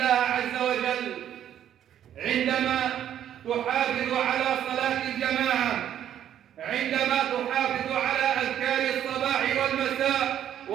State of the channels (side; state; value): left; quieter; 10.5 dB